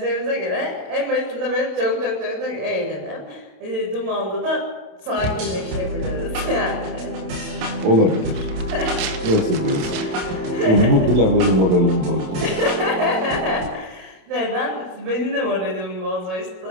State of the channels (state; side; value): late; left; 28 ms